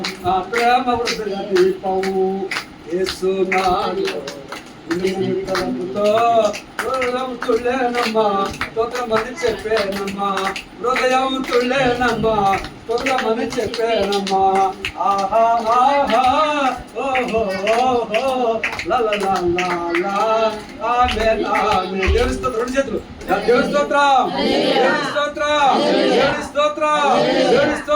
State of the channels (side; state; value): both; identical; correlation 1.00